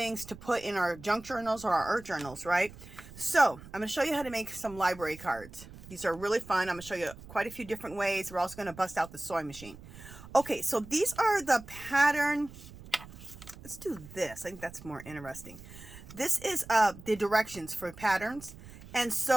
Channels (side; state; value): right; noise; rumble, 17 dB below the sound